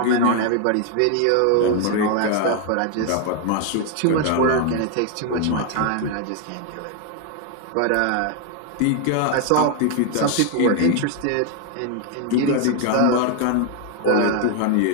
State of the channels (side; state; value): both; different; correlation 0.00